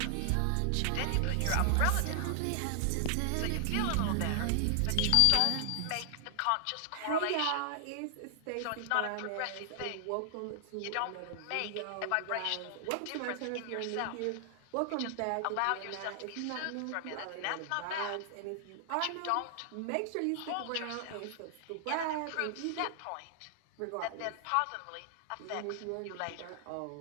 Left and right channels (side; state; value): both; different; correlation 0.00